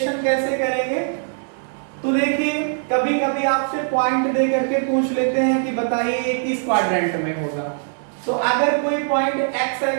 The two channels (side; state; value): left; silent; digital silence